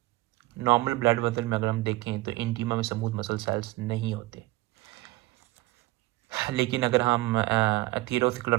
नॉर्मल ब्लड वेसल में अगर हम देखें तो इंटीमा में स्मूथ मसल सेल्स नहीं होते, लेकिन अगर हम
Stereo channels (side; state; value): left; quieter; 19.5 dB